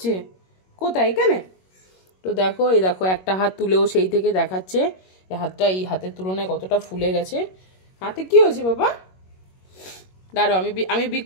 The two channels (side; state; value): right; late; 21 ms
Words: কোথায়? এখানে? তো দেখো, এই দেখো একটা হাত তুলেও সেই থেকে দেখাচ্ছে এই হাতটা এই হাতের তুলনায় কতটা ফুলে গেছে। হাতে কি হয়েছে বাবা? দাঁড়াও, আমি